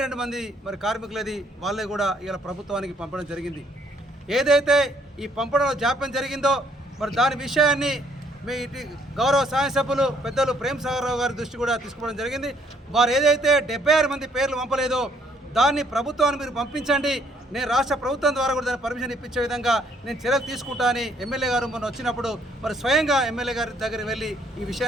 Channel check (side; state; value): both; normal; correlation 0.66